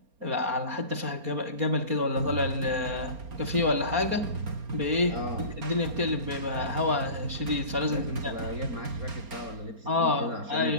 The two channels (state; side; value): late; left; 4.3 ms